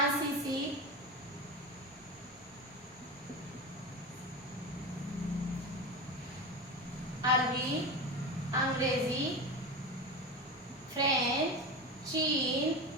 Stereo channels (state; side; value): normal; both; correlation 0.23